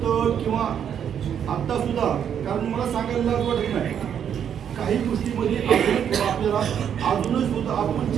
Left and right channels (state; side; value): quieter; left; 8.6 dB